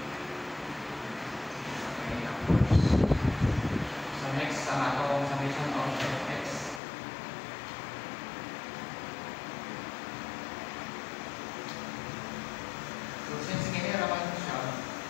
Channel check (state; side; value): drops out; right; at 6.8 s